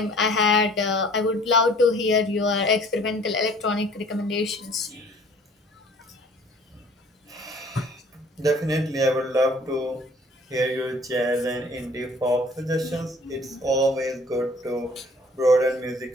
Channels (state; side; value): normal; both; correlation 0.53